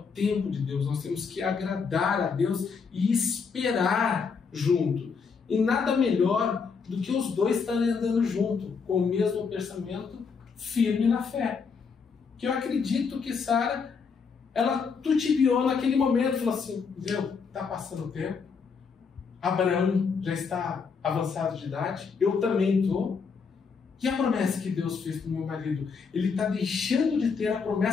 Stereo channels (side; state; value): right; quieter; 5.5 dB